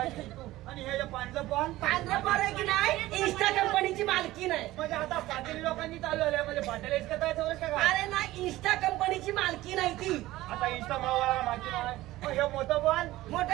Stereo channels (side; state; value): left; quieter; 16.9 dB